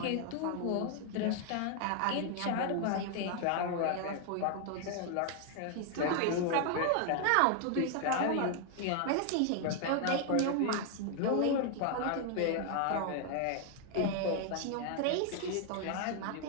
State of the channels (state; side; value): different; both; correlation 0.00